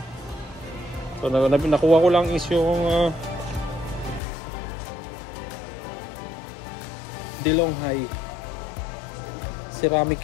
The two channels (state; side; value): drops out; right; at 4.2 s